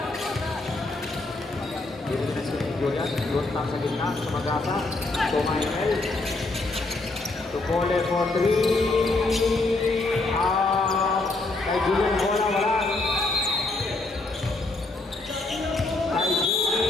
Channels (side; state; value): right; quieter; 3.2 dB